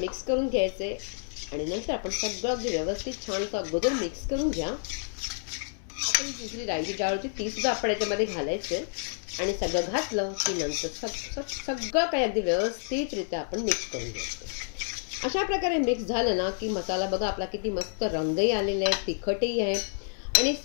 करून घ्यायचे. आणि नंतर आपण सगळं अगदी व्यवस्थित छान असं अगोदर मिक्स करून घ्या. आता ही दुसरी राईची डाळ होती ती सुद्धा आपण याच्यामध्ये घालायचे. आणि सगळं घातलं की नंतर सगळं काही अगदी व्यवस्थितरित्या आपण मिक्स करून घ्यायचं. अशा प्रकारे मिक्स झालं ना की मसाला बघा आपला किती मस्त रंगही आलेला आहे, तिखटही आहे. आणि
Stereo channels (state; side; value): silent; right; 59 dB below the other